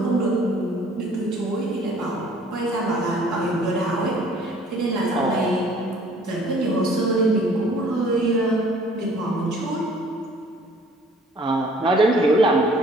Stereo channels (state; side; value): normal; both; correlation 0.55